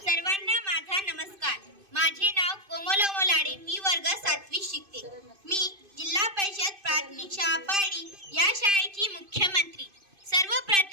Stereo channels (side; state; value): left; late; 2.5 ms